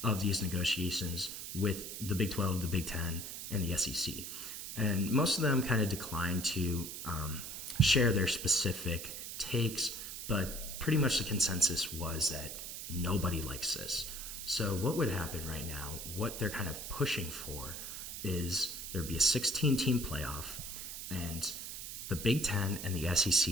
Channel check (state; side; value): noise; right; hiss, 8 dB below the sound